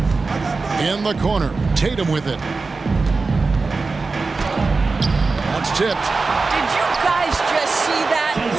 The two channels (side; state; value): left; quieter; 4.0 dB